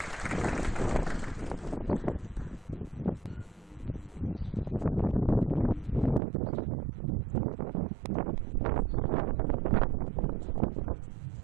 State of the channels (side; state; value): left; drops out; at 6.2 s